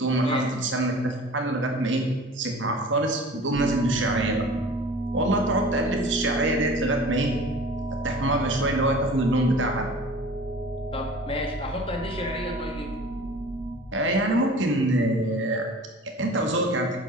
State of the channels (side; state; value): both; normal; correlation 0.42